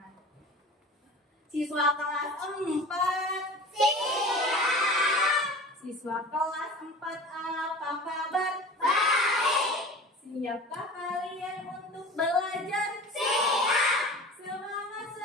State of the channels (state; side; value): normal; both; correlation 0.37